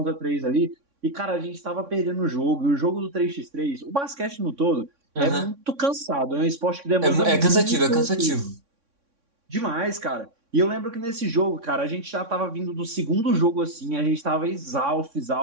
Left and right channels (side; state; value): left; late; 3.6 ms